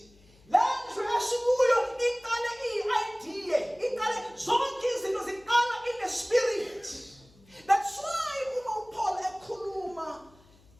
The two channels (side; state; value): left; noise; hum, 28 dB below the sound